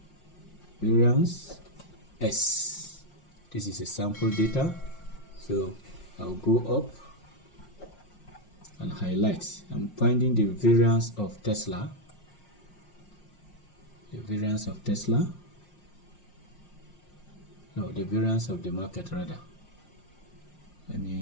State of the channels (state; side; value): late; right; 5.1 ms